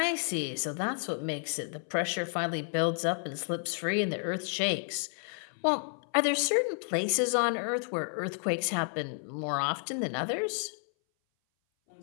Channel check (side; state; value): right; silent; 57 dB below the other